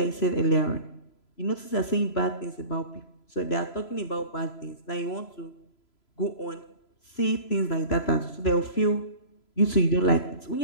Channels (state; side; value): late; right; 3.0 ms